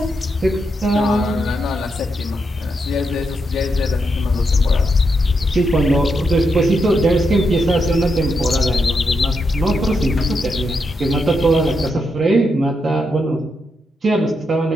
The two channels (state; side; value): normal; both; correlation 0.83